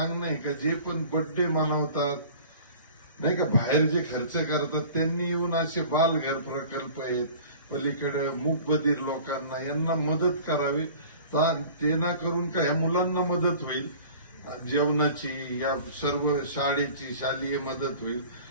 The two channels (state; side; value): inverted; both; correlation -0.44